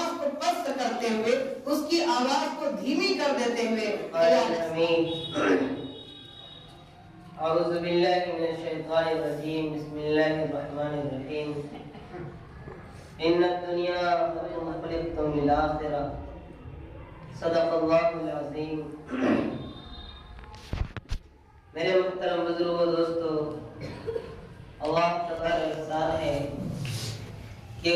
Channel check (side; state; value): both; identical; correlation 1.00